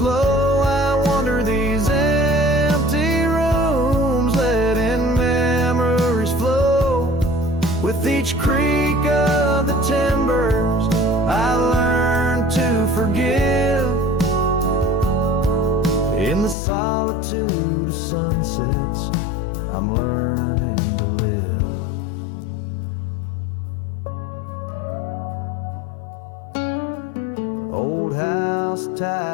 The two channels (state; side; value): drops out; right; at 16.6 s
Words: low, I wander these empty rooms, letting memories flow. With each creak of the timbers I learn to forgive. In the solitude of sunsets I'm learning to live. Old house